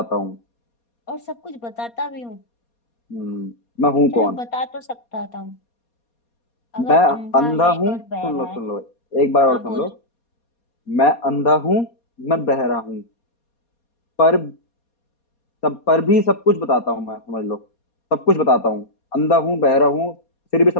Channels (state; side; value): late; right; 4.2 ms